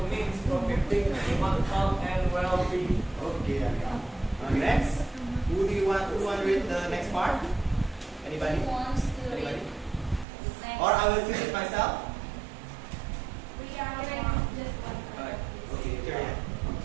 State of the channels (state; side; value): drops out; left; at 10.2 s